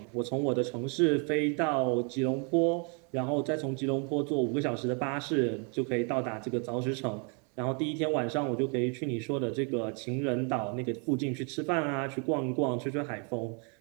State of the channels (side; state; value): left; quieter; 37.2 dB